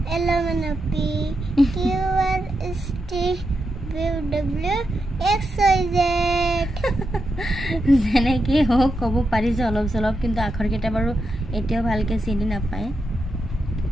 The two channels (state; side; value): normal; both; correlation 0.86